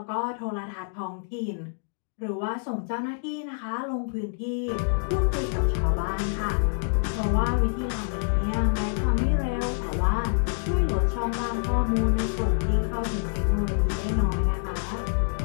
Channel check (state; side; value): silent; right; digital silence